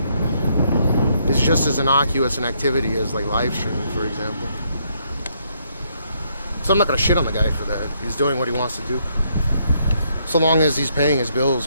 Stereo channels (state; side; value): inverted; both; correlation -0.73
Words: just as innocuous an activity as like live streaming, for example. So I'm not gonna shit on the guy for that. He's doing what he wants to do. So long as he's paying his bills,